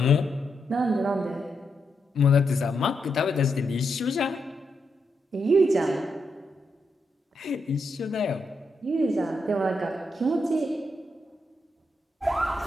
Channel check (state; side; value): normal; both; correlation 0.83